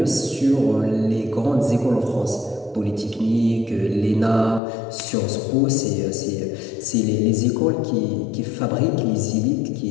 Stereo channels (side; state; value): right; drops out; at 4.6 s